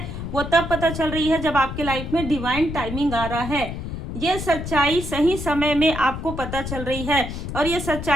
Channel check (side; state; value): left; noise; rumble, 7 dB below the sound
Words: वो तब पता चल रही है जब आपके लाइफ में डिवाइन टाइमिंग आ रहा है। ये सच्चाई सही समय में आपको पता चल रही है, और ये